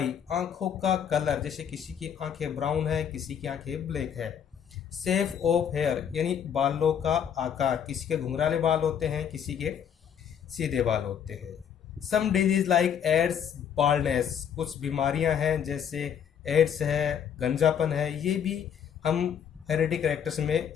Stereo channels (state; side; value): quieter; right; 8.4 dB